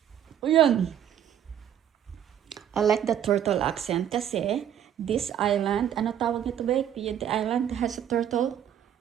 O yan. I like the turtle accent kasi this island, ano tawag nito ba? The island has a turtle.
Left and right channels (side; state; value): left; quieter; 10.0 dB